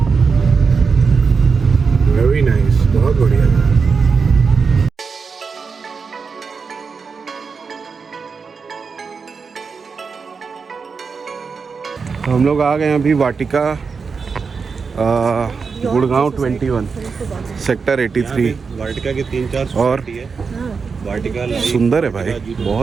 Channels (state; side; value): quieter; left; 5.2 dB